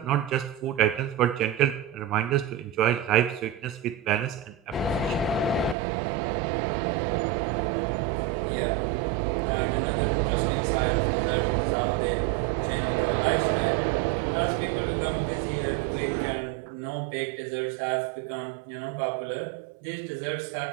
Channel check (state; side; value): drops out; left; at 5.8 s